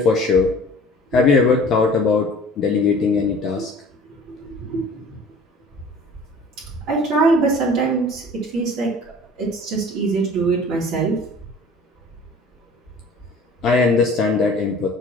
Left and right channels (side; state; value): both; normal; correlation 0.46